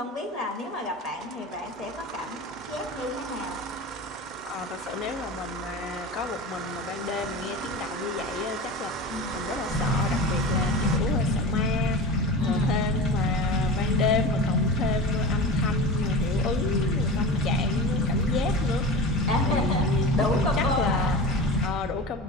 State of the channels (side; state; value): both; normal; correlation 0.31